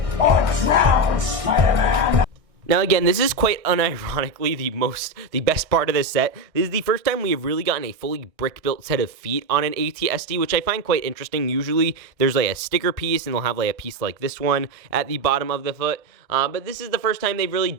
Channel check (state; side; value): late; left; 1.6 ms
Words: or drown, Spider-Man. Now again, this is quite unironically the best part of this set. This is the first time we have really gotten a fully brick-built set of feet on an ATST, which I find quite interesting. Usually there's like a sticker piece, and they'll have like a piece like this one at the bottom of the foot. But this is the first time they've really